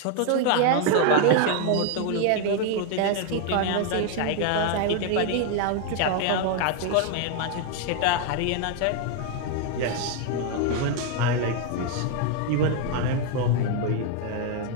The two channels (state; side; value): different; both; correlation 0.01